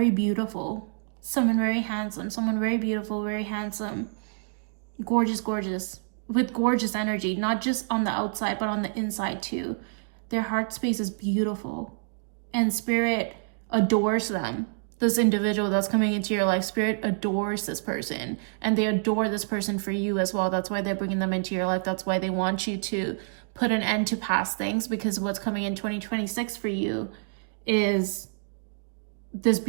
beautiful, someone very handsome, someone very beautiful, very handsome, gorgeous, with gorgeous energy, not just on the outside, but on the inside too. Their heart space is beautiful, and Spirit adores them. This individual that's coming into your life, Spirit adores this person, and they adore this person for you as well. That's why they're bringing them into your life. That's why they want you to put an end to past things, because what's coming in 2026 for you is this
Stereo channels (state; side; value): silent; left; digital silence